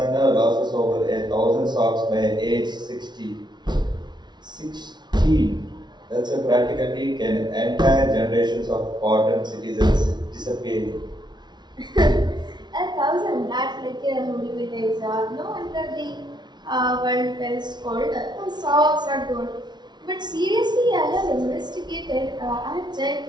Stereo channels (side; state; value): left; late; 0.20 ms